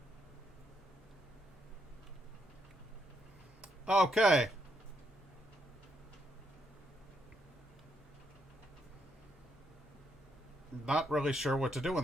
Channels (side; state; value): both; normal; correlation 0.77